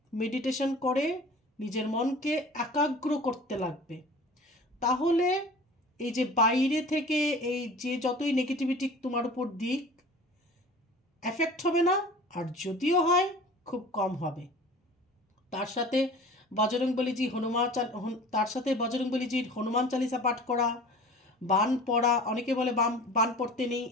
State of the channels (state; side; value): normal; both; correlation 0.42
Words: মেডিটেশন করে নিজের মনকে একাগ্র করতে লাগবে, তাহলে এই যে বাইরে থেকে এই যে যতই নেগেটিভিটি তোমার উপর দিক, এফেক্ট হবে না, আর যদিও হয় খুব কম হবে। তার সাথে বজরংবলীজি হনুমান চালিসা পাঠ করা, বান পড়া, অনেকে বলে বান পড়তে নেই,